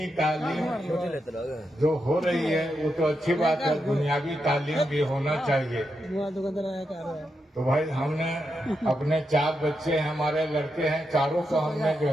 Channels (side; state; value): both; normal; correlation 0.85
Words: तालीम जो हो रही है वो तो अच्छी बात है, दुनियावी तालीम भी होना चाहिए। तो भाई हमने अपने 4 बच्चे हैं, हमारे लड़के हैं, चारों को हमने जो